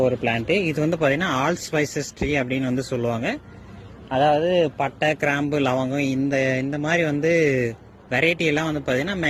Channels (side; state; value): both; identical; correlation 1.00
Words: ஒரு பிளான்ட்டு. இது வந்து பார்த்தீங்கன்னா ஆல் ஸ்பைசஸ் ட்ரீ அப்படின்னு வந்து சொல்லுவாங்க. அதாவது பட்டை, கிராம்பு, லவங்கம் இந்த மாதிரி வந்து வெரைட்டி எல்லாம் வந்து பார்த்தீங்கன்னா